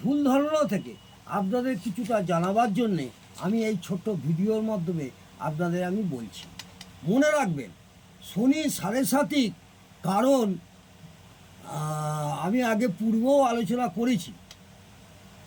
ধারণা থেকে আপনাদের কিছুটা জানাবার জন্যে আমি এই ছোট্ট ভিডিওর মাধ্যমে আপনাদের আমি বলছি। মনে রাখবেন, শনি সাড়ে সাতিক কারণ আমি আগে পূর্বেও আলোচনা করেছি।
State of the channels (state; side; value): identical; both; correlation 1.00